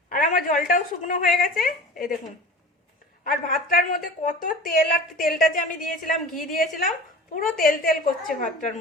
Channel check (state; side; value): normal; both; correlation 0.37